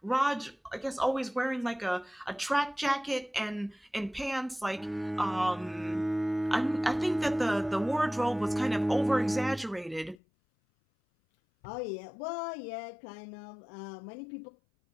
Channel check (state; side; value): drops out; right; at 10.2 s